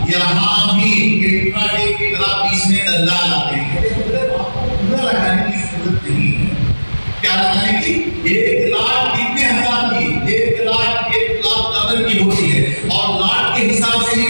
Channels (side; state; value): both; inverted; correlation -1.00